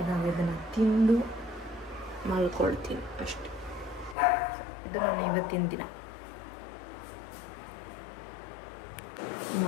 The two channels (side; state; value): right; drops out; at 4.2 s